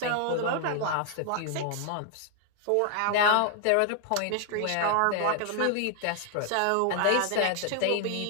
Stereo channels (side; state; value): both; different; correlation 0.00